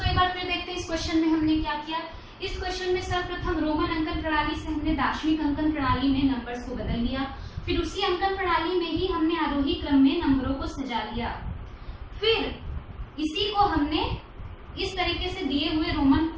एक बार फिर देखते हैं इस क्वेश्चन में हमने क्या किया। इस क्वेश्चन में सर्वप्रथम रोमन अंकन प्रणाली से हमने दार्शनिक अंकन प्रणाली में नंबर्स को बदल लिया। फिर उसी अंकन प्रणाली में ही हमने आरोही क्रम में नंबरों को सजा लिया। फिर इसी को हमने इस तरीके से दिए हुए रोमन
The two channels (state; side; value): identical; both; correlation 1.00